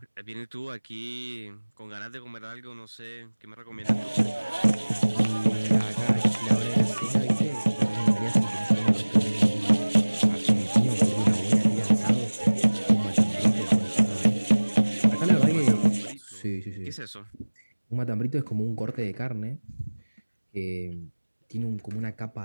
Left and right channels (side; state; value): both; inverted; correlation -1.00